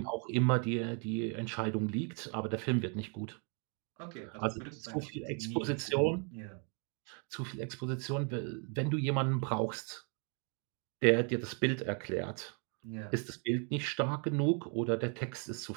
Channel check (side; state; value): left; quieter; 39.1 dB